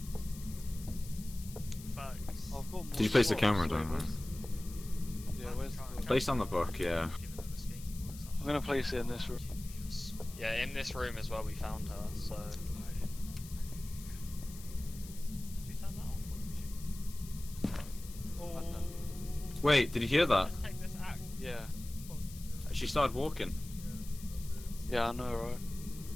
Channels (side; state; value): left; noise; hiss, 16 dB below the sound